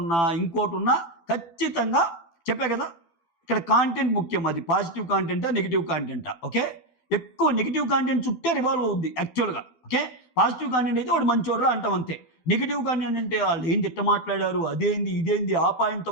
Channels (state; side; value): late; right; 12 ms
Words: ఇంకోటున్నా ఖచ్చితంగా చెప్పా కదా! ఇక్కడ కాంటెంట్ ముఖ్యం. అది పాజిటివ్ కాంటెంటా? నెగెటివ్ కాంటెంటా? ఓకే. ఎక్కువ నెగెటివ్ కాంటెంట్ చుట్టే రివాల్వ్ అవుద్ది యాక్చువల్‌గా. ఓకే. పాజిటివ్ కాంటెంట్ అయితే వాడు మంచోడురా అంటాం అంతే. నెగెటివ్ కాంటెంట్ అంటే ఆళ్ళేంది ఇట్ట మాట్లాడారు, అదేంది, ఇదేంది, ఆ పాయింట్